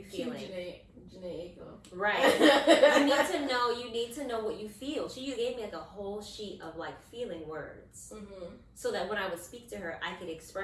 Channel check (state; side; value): identical; both; correlation 1.00